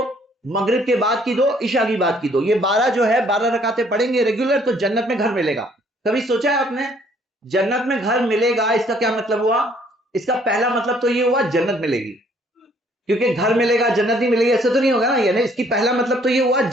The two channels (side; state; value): both; normal; correlation 0.62